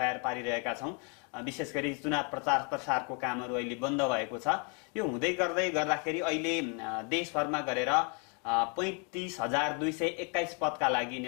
पारिरहेका छौँ। विशेष गरी चुनाव प्रचार प्रसारको कामहरू अहिले बन्द भएको छ। यो हुँदै गर्दाखेरि अहिले देशभरमा गरेर 35,221 पदका लागि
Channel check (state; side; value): quieter; right; 36.2 dB